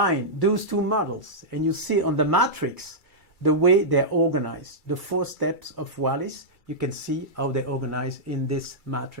those two models, and you see on the matrix the way they're organized. The 4 steps of Wallis, you can see how they're organized in this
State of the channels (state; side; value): late; right; 2.3 ms